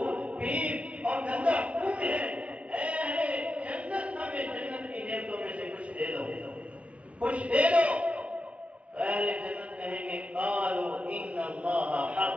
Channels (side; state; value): left; late; 0.063 ms